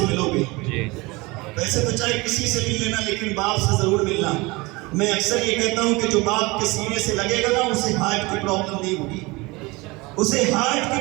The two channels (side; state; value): left; quieter; 23.7 dB